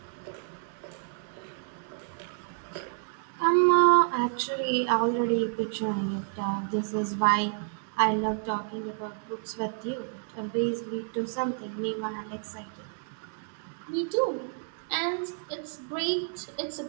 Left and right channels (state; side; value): silent; left; 58 dB below the other